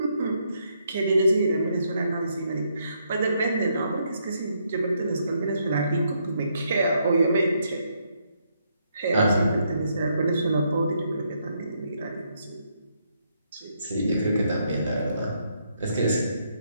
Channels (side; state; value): both; inverted; correlation -0.75